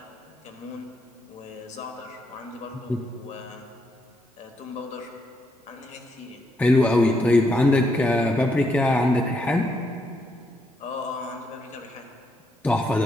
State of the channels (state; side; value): normal; both; correlation 0.77